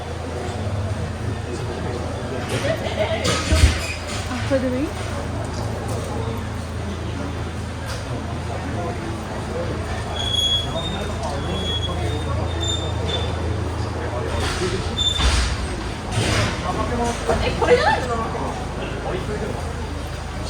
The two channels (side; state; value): both; identical; correlation 1.00